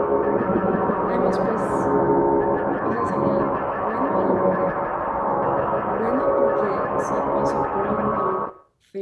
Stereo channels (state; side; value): identical; both; correlation 1.00